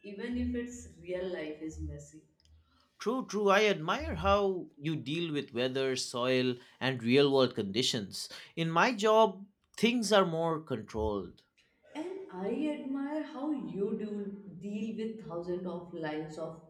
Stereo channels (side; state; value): both; identical; correlation 1.00